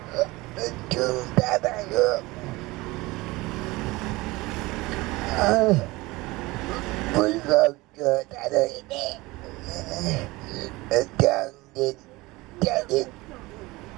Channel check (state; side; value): quieter; left; 21.2 dB